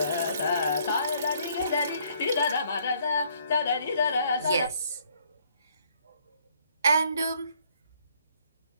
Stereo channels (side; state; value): both; inverted; correlation -0.65